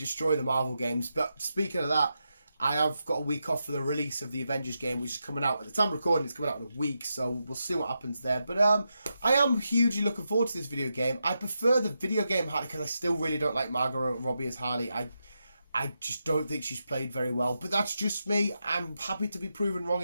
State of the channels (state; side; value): inverted; both; correlation -0.86